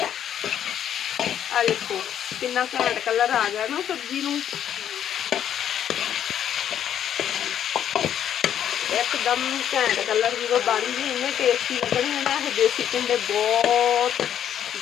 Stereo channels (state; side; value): quieter; right; 9.8 dB